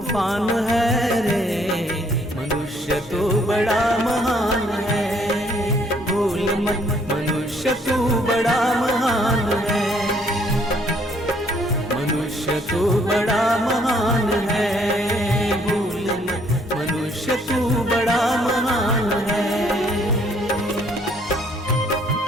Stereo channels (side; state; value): both; normal; correlation 0.65